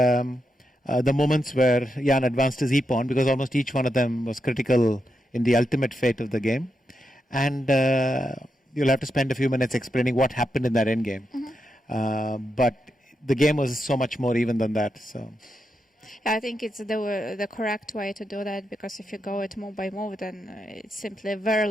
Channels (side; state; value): both; normal; correlation 0.85